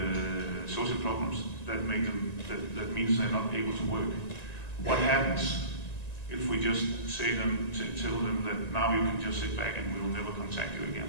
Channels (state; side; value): late; right; 1.9 ms